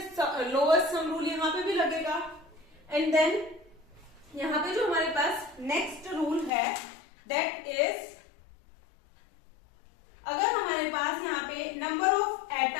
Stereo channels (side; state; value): right; drops out; at 6.5 s